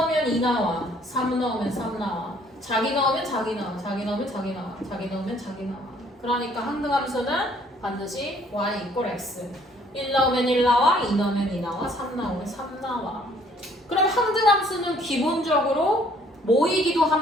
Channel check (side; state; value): both; normal; correlation 0.61